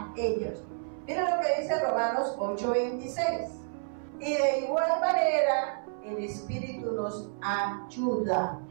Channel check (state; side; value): silent; left; 58 dB below the other